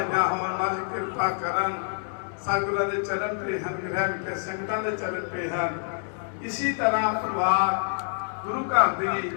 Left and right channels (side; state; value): right; silent; 60 dB below the other